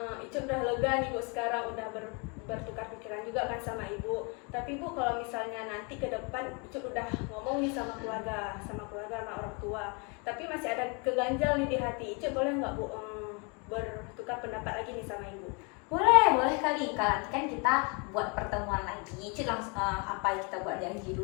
Icu udah lega nih Bu, sekarang udah bertukar pikiran juga kan sama Ibu. Tapi Bu, kalau misalnya nanti ke depan Icu udah ngomong nih sama keluarga sama orang tua, tapi masih ada keganjal nih di hati Icu, boleh nggak Bu bertukar pendapat lagi nih sama Ibu? Boleh kali. Kalau nanti kan kita buat pertemuan lagi, Icu langsung apa kita buat janji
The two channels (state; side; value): quieter; right; 32.9 dB